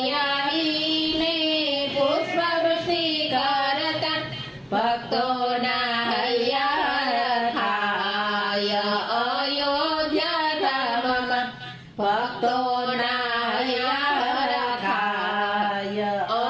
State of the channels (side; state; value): both; identical; correlation 1.00